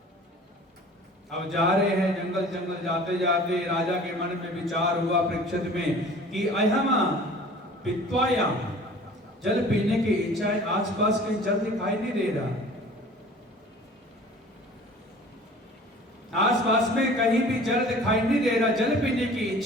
अब जा रहे हैं जंगल जंगल जाते जाते राजा के मन में विचार हुआ परीक्षित में कि अहमा पित्वायाम, जल पीने की इच्छा है, आसपास कहीं जल दिखाई नहीं दे रहा, आसपास में कहीं भी जल दिखाई नहीं दे रहा, जल पीने की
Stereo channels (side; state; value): both; normal; correlation 0.46